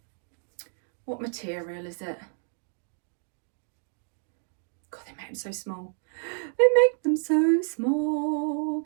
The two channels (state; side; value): silent; left; digital silence